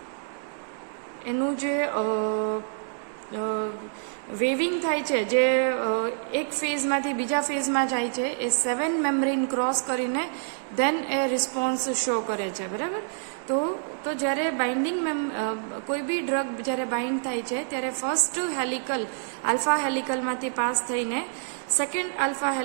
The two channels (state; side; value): silent; left; 60 dB below the other